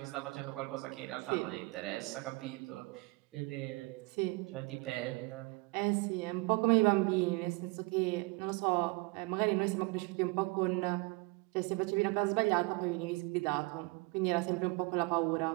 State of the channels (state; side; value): quieter; left; 25.6 dB